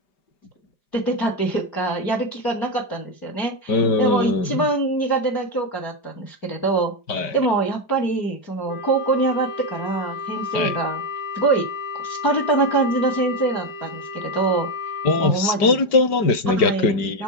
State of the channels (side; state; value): right; late; 4.9 ms